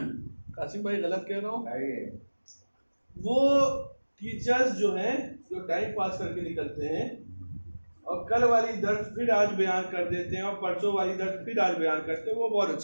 कासिम भाई गलत कह रहा हूँ? वो टीचर्स जो हैं जो टाइम पास करके निकलते हैं और कल वाली दर्स फिर आज बयान कर देते हैं और परसों वाली दर्स फिर आज बयान करते हैं, वो बहुत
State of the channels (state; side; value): inverted; both; correlation -1.00